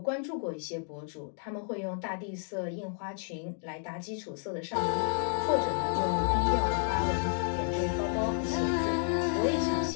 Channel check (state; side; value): silent; right; 57 dB below the other